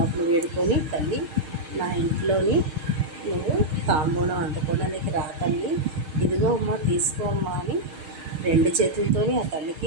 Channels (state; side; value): late; left; 6.5 ms